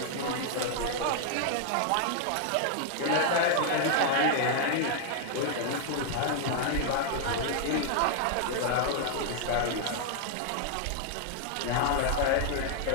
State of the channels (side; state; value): both; different; correlation 0.00